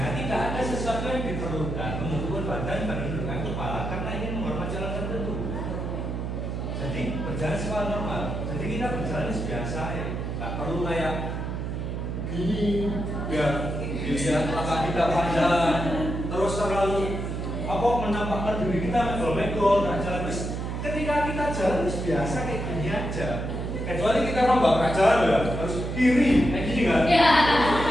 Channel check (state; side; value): noise; right; hum, 4 dB below the sound